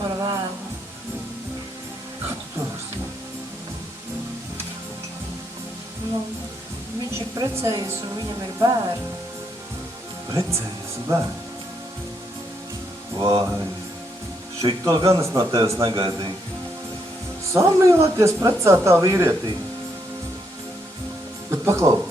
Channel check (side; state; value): both; normal; correlation 0.76